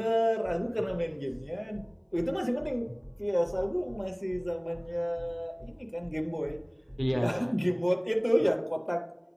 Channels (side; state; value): both; identical; correlation 1.00